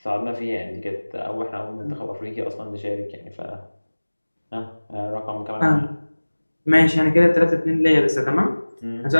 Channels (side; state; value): both; inverted; correlation -1.00